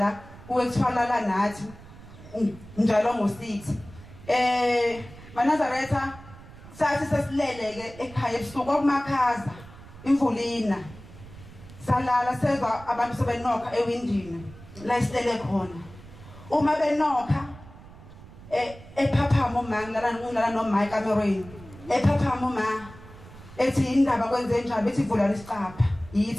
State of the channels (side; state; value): right; noise; rumble, 18 dB below the sound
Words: kuwekuthwalala nathi njalo ngo6 Manazaretha sathi sesileleke ekhaya ebusuku okumakhaza imvulina salala sezwa abantu sebenokha ewindini la isilele khona uma benokha ephaphama uma ngilala noMike kamerweni ephaphama uma ethi indaba kwenze njani bethi vula lesicapha